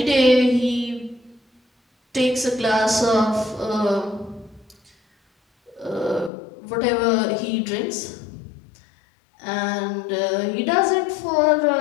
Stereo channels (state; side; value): drops out; right; at 6.3 s